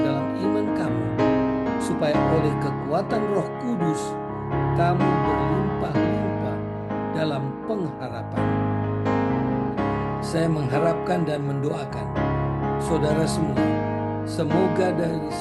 iman kamu, supaya oleh kekuatan Roh Kudus kamu berlimpah-limpah dalam pengharapan. Saya mengharapkan dan mendoakan saudara semua, semoga dari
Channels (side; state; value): both; identical; correlation 1.00